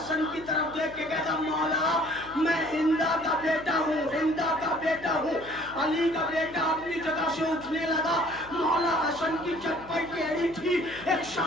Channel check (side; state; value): left; noise; hum, 19 dB below the sound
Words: کی طرف دیکھ کے کہتا مولا میں ہندا کا بیٹا ہوں, ہندا کا بیٹا ہوں. علی کا بیٹا اپنی جگہ سے اٹھنے لگا. مولا حسن کی چپل ٹیڑھی تھی, ایک